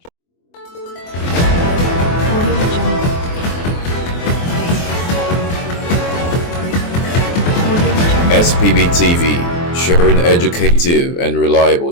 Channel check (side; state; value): right; late; 24 ms